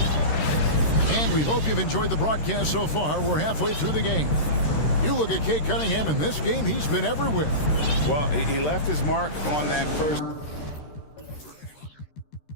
And we hope you've enjoyed the broadcast so far. We're halfway through the game. You look at Cade Cunningham in this game, he's been everywhere. Well, he left his mark on that first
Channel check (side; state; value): right; late; 13 ms